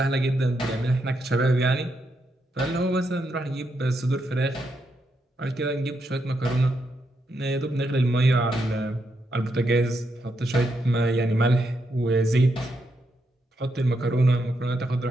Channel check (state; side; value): normal; both; correlation 0.81